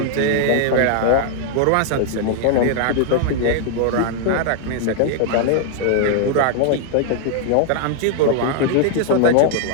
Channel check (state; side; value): different; both; correlation -0.01